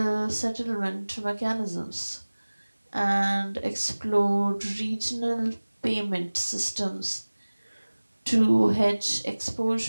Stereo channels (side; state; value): both; inverted; correlation -1.00